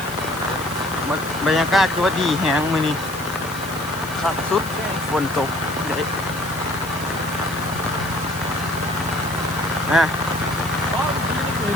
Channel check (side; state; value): left; noise; hiss, 16 dB below the sound